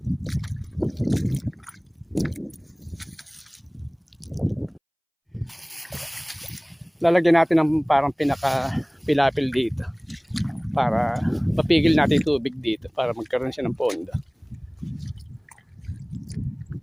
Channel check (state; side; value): identical; both; correlation 1.00